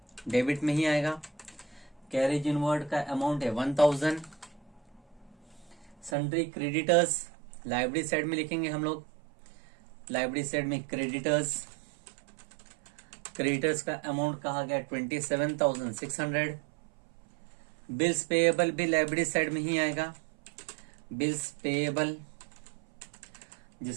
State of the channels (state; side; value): drops out; left; at 6.2 s